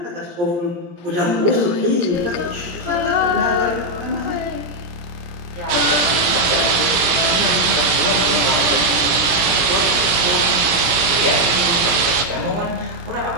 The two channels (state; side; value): late; left; 17 ms